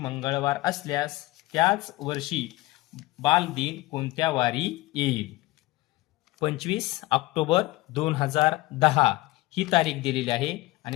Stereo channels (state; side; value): quieter; right; 19.5 dB